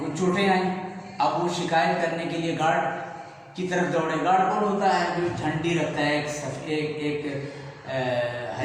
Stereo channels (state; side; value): identical; both; correlation 1.00